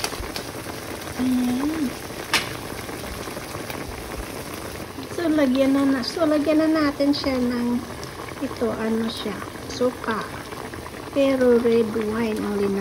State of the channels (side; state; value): both; identical; correlation 1.00